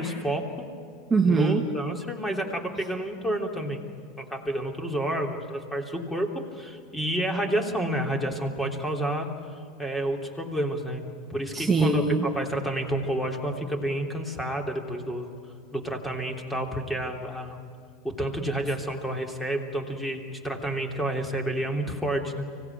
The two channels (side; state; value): both; normal; correlation 0.61